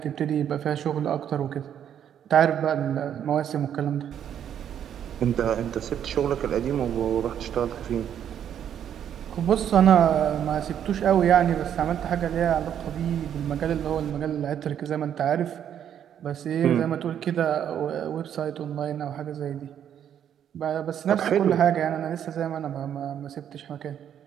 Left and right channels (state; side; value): quieter; left; 9.5 dB